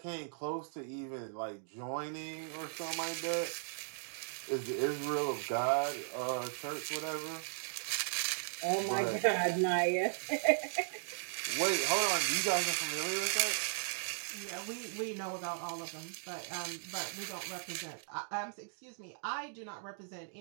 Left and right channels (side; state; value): left; silent; digital silence